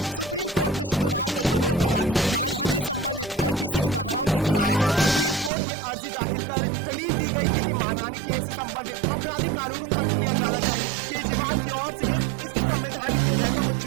सुप्रीम कोर्ट ने शुक्रवार को इस पर रोक लगा दी। मानहानि से संबंधित आईपीसी की धाराओं के खिलाफ सुप्रीम कोर्ट में अर्जी दाखिल कर दलील दी गई थी कि मानहानि केस से संबंधित आपराधिक कानून को खत्म किया जाना चाहिए। केजरीवाल की ओर से इसकी संवैधानिक विधेयकों को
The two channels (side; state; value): left; drops out; at 5.5 s